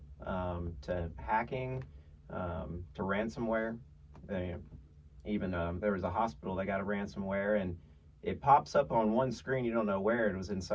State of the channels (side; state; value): both; identical; correlation 1.00